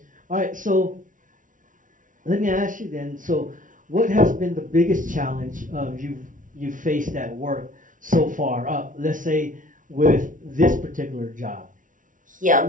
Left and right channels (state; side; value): late; left; 0.38 ms